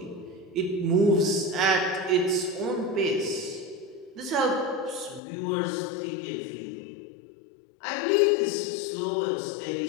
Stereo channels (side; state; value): right; drops out; at 5.2 s